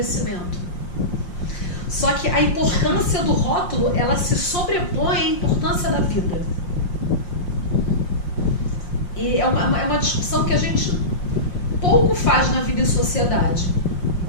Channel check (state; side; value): late; right; 5.6 ms